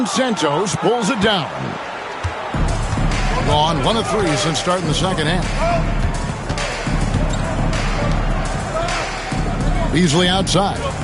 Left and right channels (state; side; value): identical; both; correlation 1.00